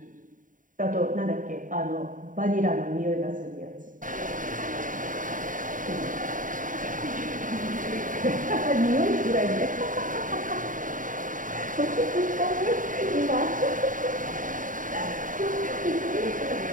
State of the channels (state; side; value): late; left; 0.38 ms